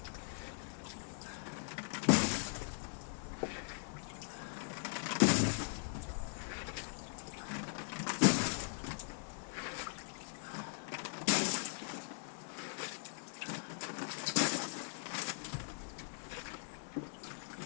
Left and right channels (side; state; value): right; silent; 51 dB below the other